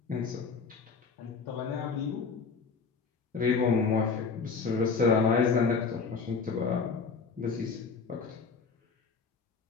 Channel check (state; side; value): quieter; right; 5.0 dB